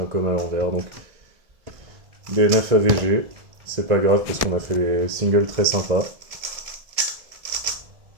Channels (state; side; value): late; left; 1.7 ms